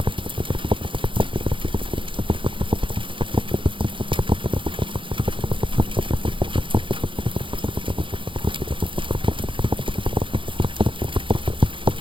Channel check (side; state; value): left; late; 0.25 ms